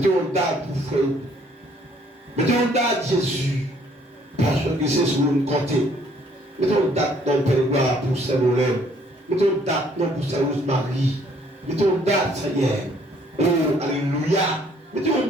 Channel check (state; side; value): normal; both; correlation 0.62